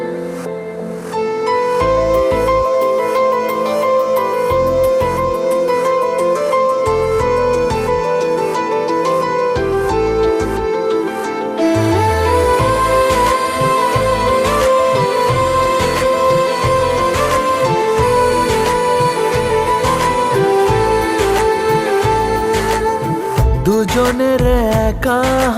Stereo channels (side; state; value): both; identical; correlation 1.00